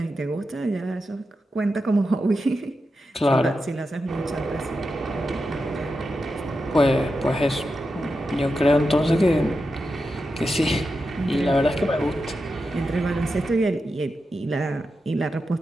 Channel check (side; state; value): both; normal; correlation 0.89